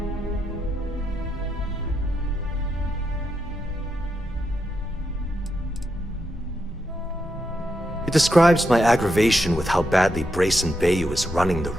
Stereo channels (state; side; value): normal; both; correlation 0.83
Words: It describes my aggravation with how badly Brayson Bayou is running the